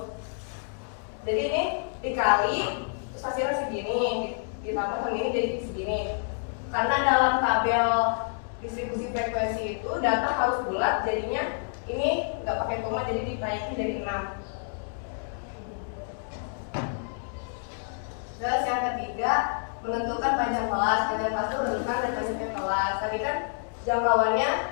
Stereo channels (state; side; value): silent; right; digital silence